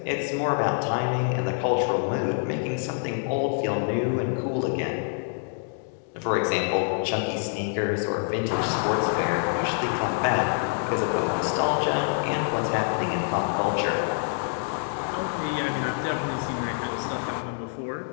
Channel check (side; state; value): right; silent; digital silence